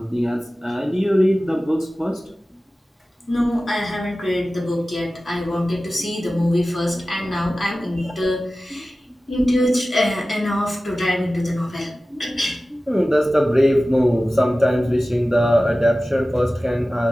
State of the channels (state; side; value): normal; both; correlation 0.96